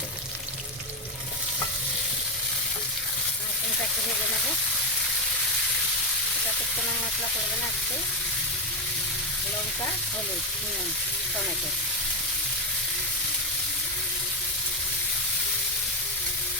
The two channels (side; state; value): both; normal; correlation 0.07